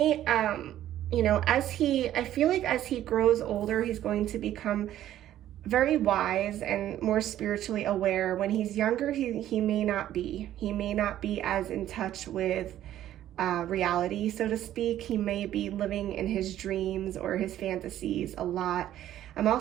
you know, I feel like as he grows older, he's going to become very wise and more spiritually aware. When he's younger, he may not be. He may not be as in touch with reality, so to speak. He may be living in his dreams or his fantasies a lot. I'm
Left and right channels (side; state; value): left; quieter; 12.4 dB